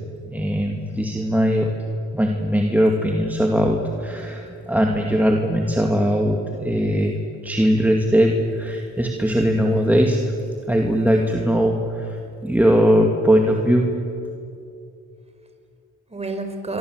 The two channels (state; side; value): normal; both; correlation 0.84